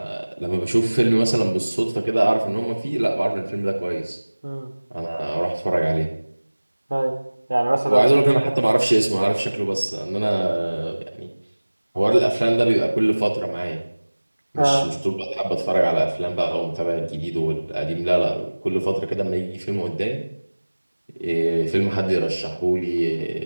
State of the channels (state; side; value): inverted; both; correlation -1.00